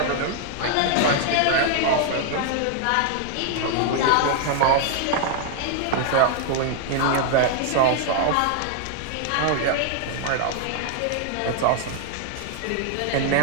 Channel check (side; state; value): both; different; correlation 0.00